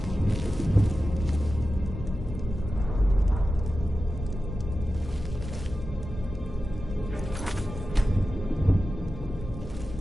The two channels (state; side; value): normal; both; correlation 0.93